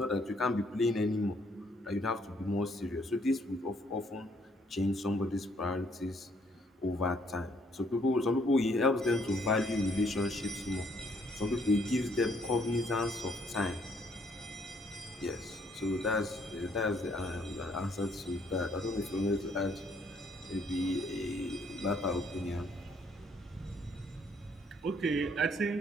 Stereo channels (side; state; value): both; normal; correlation 0.67